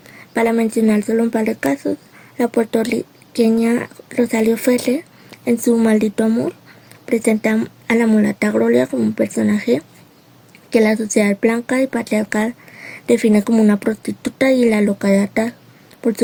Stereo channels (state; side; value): identical; both; correlation 1.00